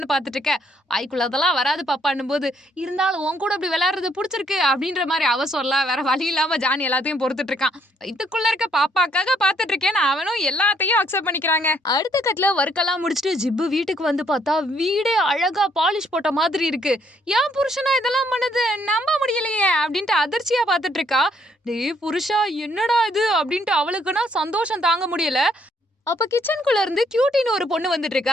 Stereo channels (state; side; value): normal; both; correlation 0.69